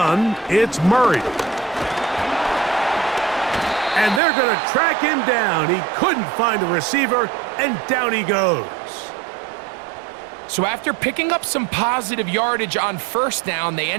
it's Murray. And they're going to track him down. He couldn't find a receiver, and down he goes. So after picking up some positive yardage on first down, they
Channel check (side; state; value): left; drops out; at 4.2 s